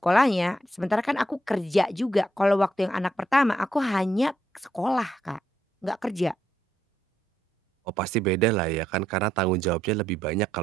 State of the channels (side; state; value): both; normal; correlation 0.77